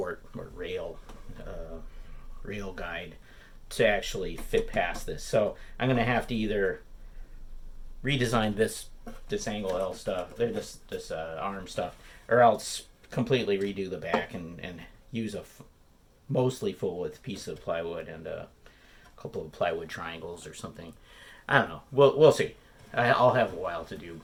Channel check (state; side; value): identical; both; correlation 1.00